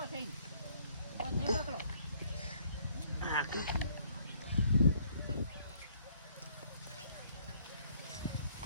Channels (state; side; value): inverted; both; correlation -0.64